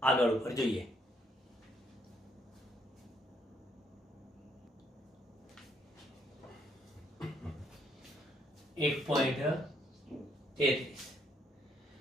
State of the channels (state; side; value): normal; both; correlation 0.70